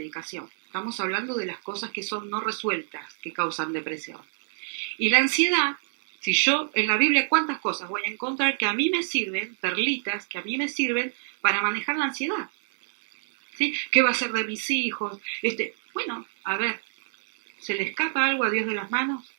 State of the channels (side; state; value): left; silent; digital silence